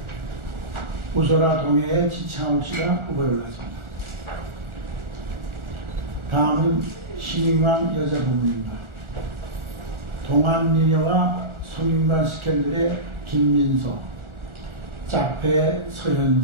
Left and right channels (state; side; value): late; left; 1.4 ms